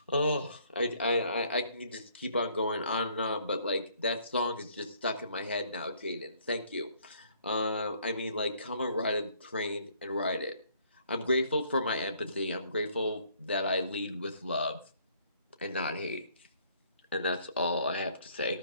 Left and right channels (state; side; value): inverted; both; correlation -0.63